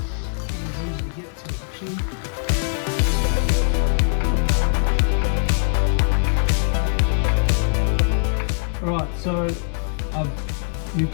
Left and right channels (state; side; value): silent; right; 64 dB below the other